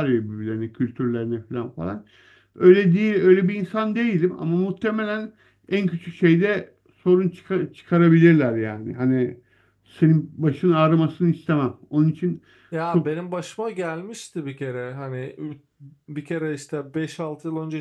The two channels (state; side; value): identical; both; correlation 1.00